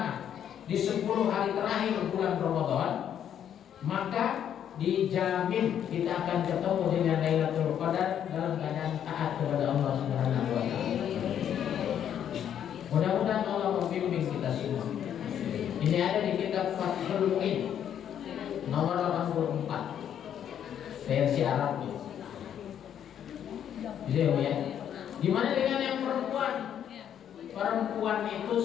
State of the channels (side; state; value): right; quieter; 9.5 dB